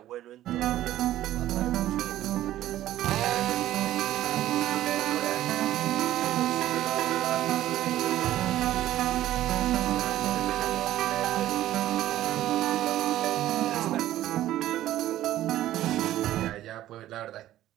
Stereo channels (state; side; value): quieter; left; 13.7 dB